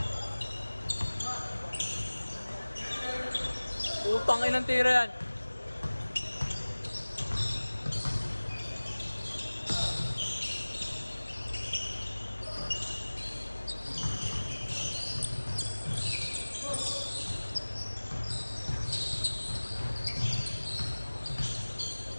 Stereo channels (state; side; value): inverted; both; correlation -1.00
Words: Utang inang tira yan.